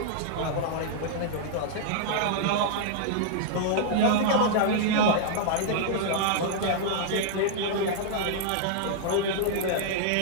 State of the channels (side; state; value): both; different; correlation -0.01